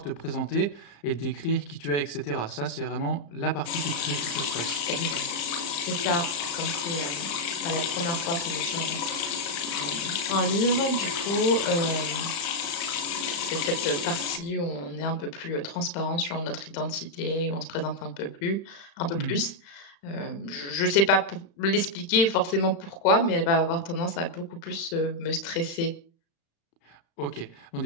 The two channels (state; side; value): late; right; 36 ms